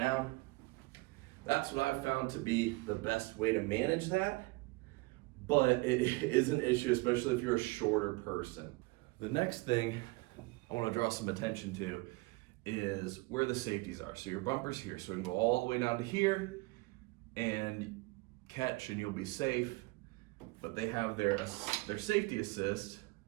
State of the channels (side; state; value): left; quieter; 24.5 dB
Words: That's what I've found to be the best way to manage that, but it is an issue, especially if you're a shorter person. The next thing I want to draw some attention to is where the safeties are. So your bumper's here, so we can go all the way down to here and catch and you'll be safe. But they have their safety assist,